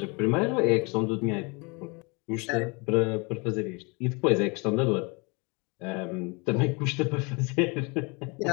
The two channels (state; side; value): quieter; right; 29.8 dB